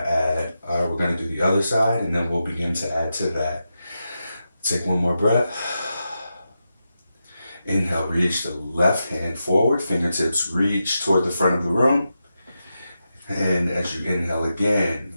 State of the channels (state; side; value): inverted; both; correlation -0.88